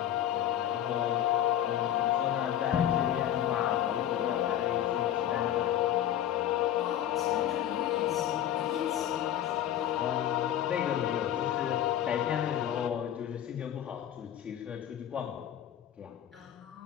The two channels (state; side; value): quieter; right; 11.2 dB